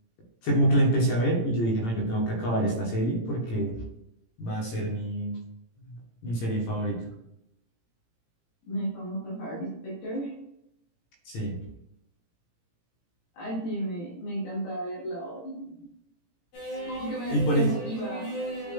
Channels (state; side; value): late; right; 18 ms